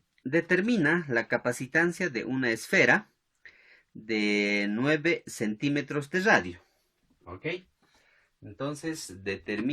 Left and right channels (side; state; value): both; identical; correlation 1.00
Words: determina la capacitancia de una esfera de 9 centímetros de radio. ¿Ok? Entonces